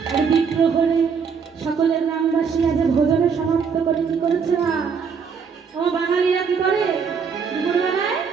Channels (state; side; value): quieter; left; 6.1 dB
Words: আর বিপ্রহরে সকলের গ্রামবাসী আজ ভোজনে সমাপ্ত করে কি করেছে না ও বাঙালিরা কি করে দুপুরবেলায়